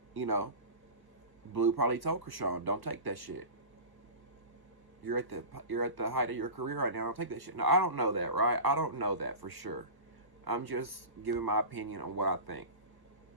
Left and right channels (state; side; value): late; left; 1.3 ms